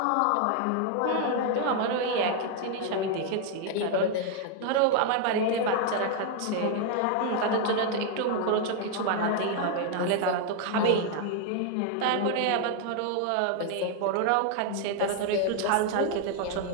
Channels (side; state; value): both; different; correlation 0.00